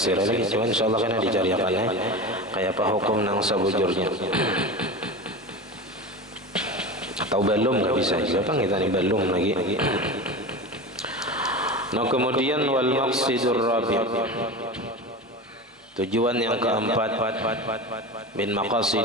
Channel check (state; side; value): normal; both; correlation 0.28